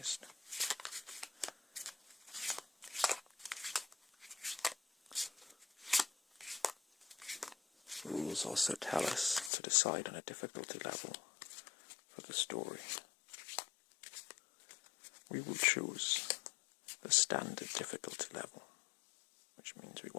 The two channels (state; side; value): drops out; right; at 9.5 s